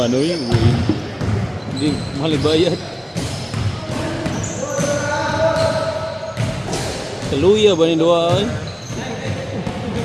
hindi mahal ibayad. Kaluya ba ni doa ay?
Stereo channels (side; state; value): both; identical; correlation 1.00